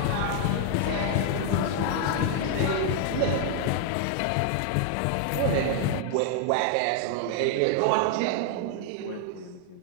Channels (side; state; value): both; different; correlation 0.00